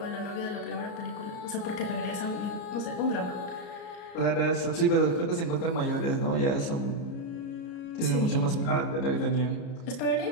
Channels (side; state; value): right; late; 33 ms